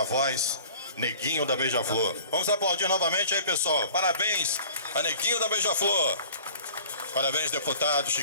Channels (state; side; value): inverted; both; correlation -0.47